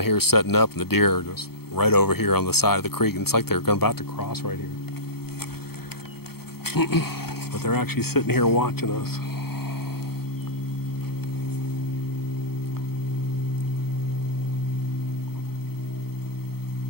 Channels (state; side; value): late; right; 0.95 ms